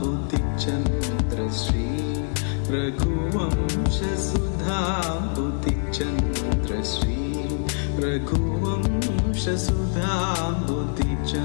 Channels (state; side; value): silent; right; digital silence